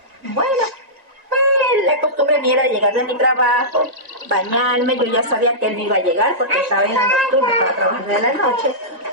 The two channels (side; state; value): left; late; 1.9 ms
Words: Bueno, pues la costumbre mía era llegar de mi trabajo, bañarme, yo ya sabía que él iba a llegar porque estaba en la nocturna, estaba trabajando de la noche.